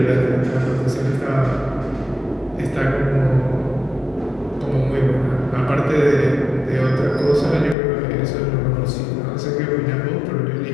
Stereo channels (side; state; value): right; drops out; at 7.8 s